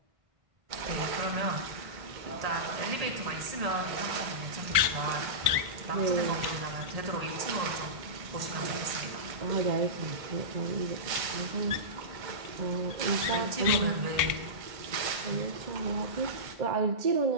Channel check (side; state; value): left; late; 1.5 ms